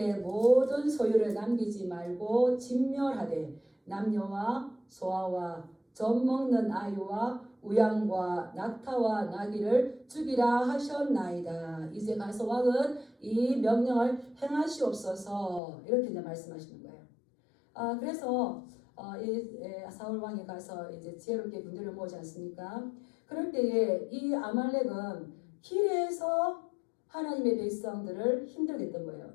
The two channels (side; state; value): right; drops out; at 15.6 s